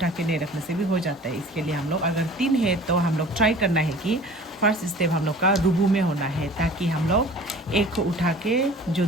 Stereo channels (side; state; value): both; normal; correlation 0.45